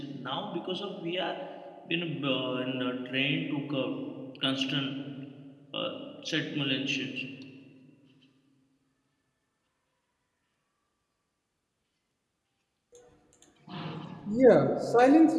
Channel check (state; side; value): identical; both; correlation 1.00